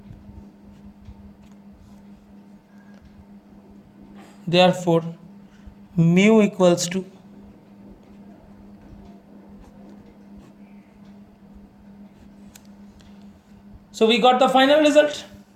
therefore mu equals to so we got the final result.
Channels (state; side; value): identical; both; correlation 1.00